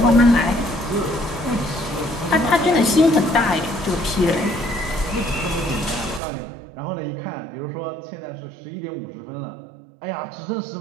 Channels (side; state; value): left; drops out; at 6.2 s